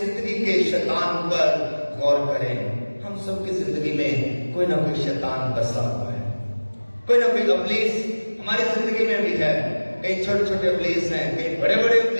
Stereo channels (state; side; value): inverted; both; correlation -1.00